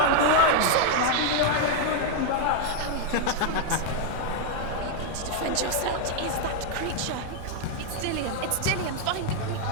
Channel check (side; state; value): both; different; correlation 0.00